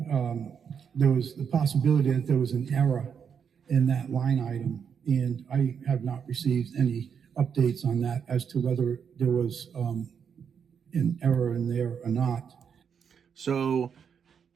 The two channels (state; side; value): quieter; left; 7.1 dB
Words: there was the possibility that there was an error in that line item, and I have not received any updates on that as to whether there was an error in there or not. So